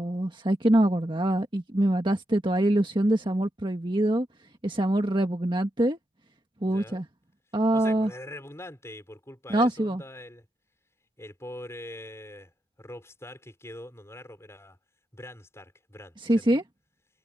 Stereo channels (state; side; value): normal; both; correlation 0.85